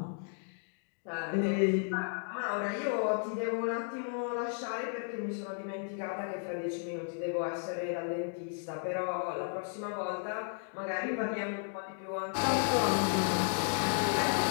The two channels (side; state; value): right; silent; 55 dB below the other